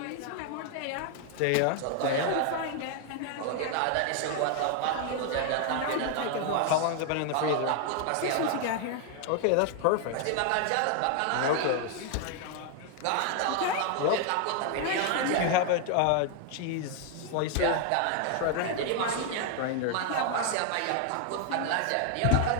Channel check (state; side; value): different; both; correlation 0.00